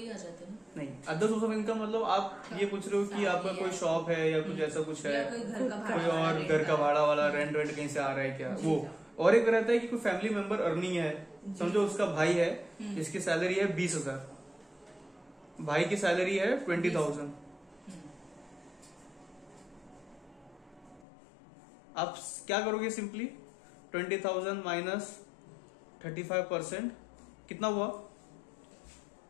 आ जाते हैं ना? नहीं, अदर सोर्स ऑफ इनकम मतलब आप ये पूछ रहे हो कि आपका कोई शॉप है या कुछ ऐसा कुछ है, या कोई घर का कोई भाड़ा और घर का भाड़ा वाला रेंट वेंट कहीं से आ रहा है क्या, वो। और एक रहता है कि कोई फैमिली मेंबर अर्निंग है, समझो उसका भाई है जिसकी सैलरी है 20,000, भाई की सैलरी है 20,000। आप क्या करोगे, सिंपली 20,000 माइनस 35% कितना हुआ,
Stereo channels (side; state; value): right; drops out; at 21.1 s